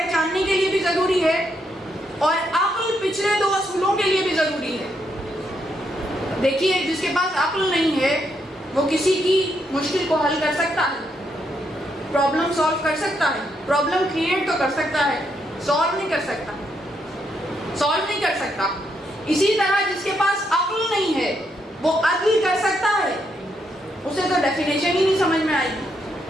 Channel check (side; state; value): both; normal; correlation 0.78